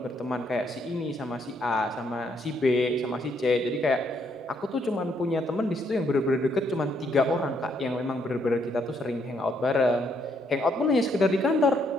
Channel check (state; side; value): normal; both; correlation 0.72